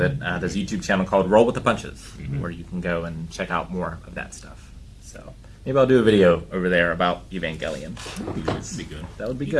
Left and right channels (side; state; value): both; identical; correlation 1.00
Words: it, there's a YouTube channel called Roll with the Punches, where you can go and check out more of that stuff. So maybe I'll do a video over there about Evangelion. That'd be good. That would be